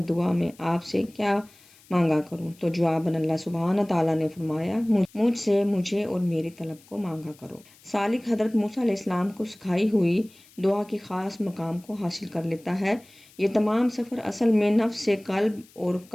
دعا میں آپ سے کیا مانگا کروں؟ تو جواباً اللہ سبحانہ تعالیٰ نے فرمایا، مجھ سے مجھے اور میری طلب کو مانگا کرو۔ سالک حضرت موسیٰ علیہ السلام کو سکھائی ہوئی دعا کے خاص مقام کو حاصل کر لیتا ہے۔ یہ تمام سفر اصل میں نفس سے قلب اور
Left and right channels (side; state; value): left; noise; hiss, 27 dB below the sound